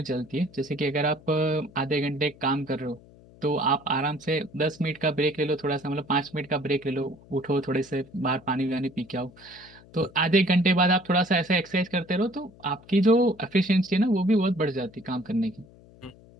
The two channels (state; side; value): noise; left; hum, 24 dB below the sound